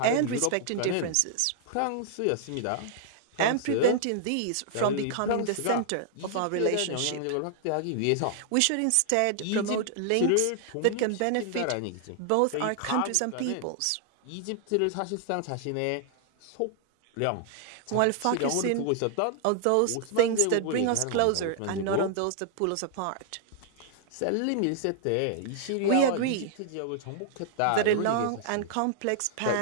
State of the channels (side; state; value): both; different; correlation -0.01